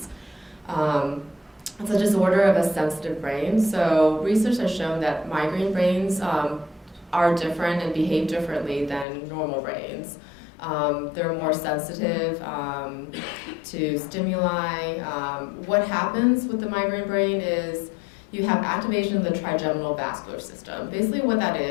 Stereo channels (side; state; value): right; drops out; at 9.1 s